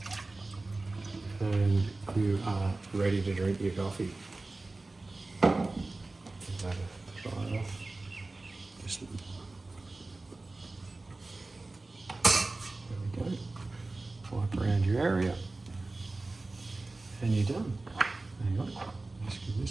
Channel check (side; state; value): left; quieter; 3.2 dB